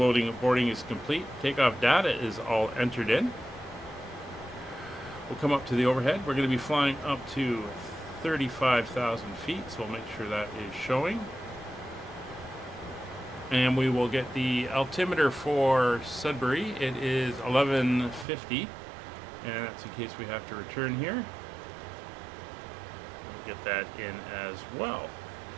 loading, boarding is complete. Takeoff data is all entered in. We'll come up to the overhead. We're going to be flying up to 35,000 feet, so we'll make sure that is showing. And we will get the altimeter for Sudbury. It is 1150, and that's in case we have to return here. We'll get that in as well.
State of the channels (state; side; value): drops out; left; at 18.2 s